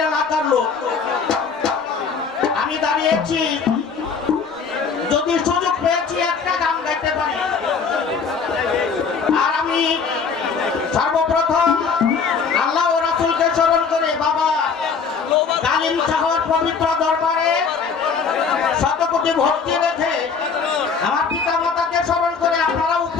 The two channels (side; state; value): right; quieter; 5.6 dB